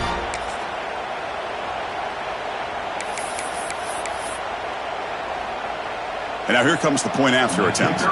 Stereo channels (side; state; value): both; identical; correlation 1.00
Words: And now here comes the point after attempt.